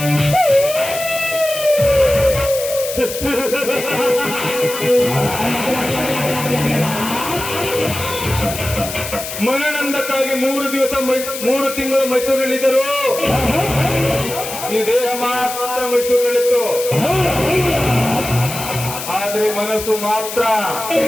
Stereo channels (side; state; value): left; noise; hiss, 8 dB below the sound